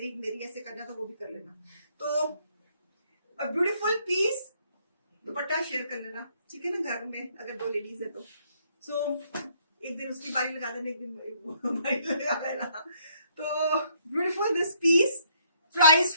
एक मेरी, ऐसे करना तो वो भी कर लेना. तो ब्यूटीफुल पीस. दुपट्टा शेयर कर लेना, ठीक है ना, घर में अगर 2 लेडीज है तो. सो एक दिन उसकी बारी लगा देना, एक दिन बारी लगा देना. तो beautiful this piece. Price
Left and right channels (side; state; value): both; inverted; correlation -0.68